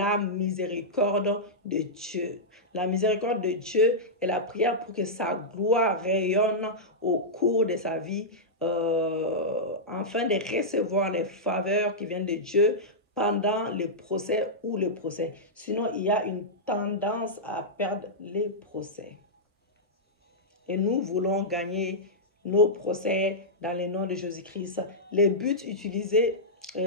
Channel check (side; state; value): both; normal; correlation -0.10